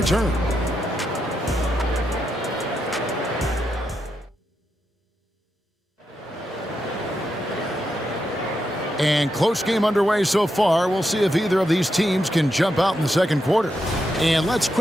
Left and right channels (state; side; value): normal; both; correlation 0.84